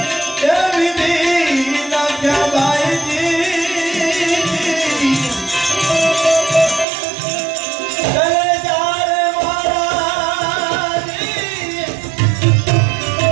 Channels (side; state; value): left; drops out; at 6.9 s